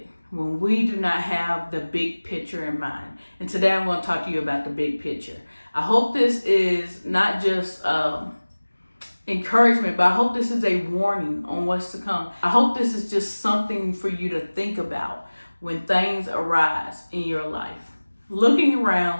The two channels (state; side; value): inverted; both; correlation -1.00